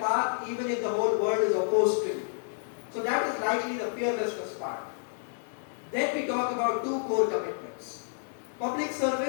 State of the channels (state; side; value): silent; right; digital silence